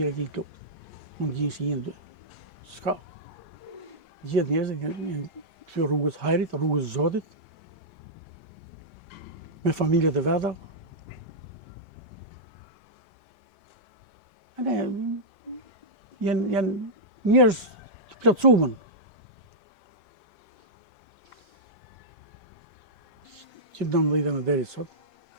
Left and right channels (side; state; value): left; late; 5.8 ms